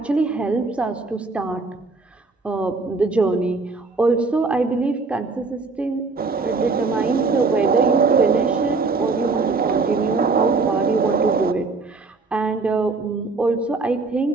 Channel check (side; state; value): left; quieter; 4.1 dB